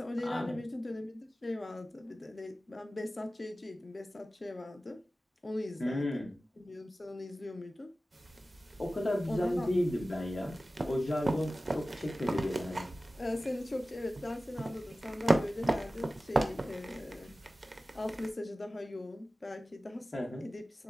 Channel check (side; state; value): both; normal; correlation 0.96